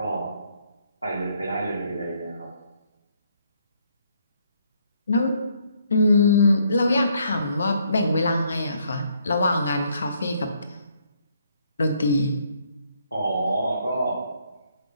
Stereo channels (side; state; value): both; inverted; correlation -0.69